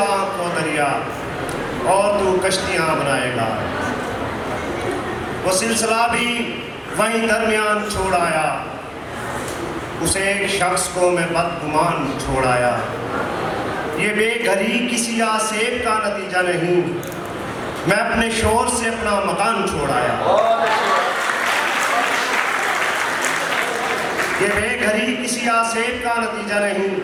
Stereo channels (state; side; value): identical; both; correlation 1.00